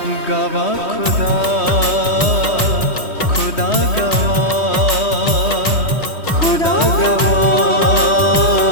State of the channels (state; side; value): late; right; 3.2 ms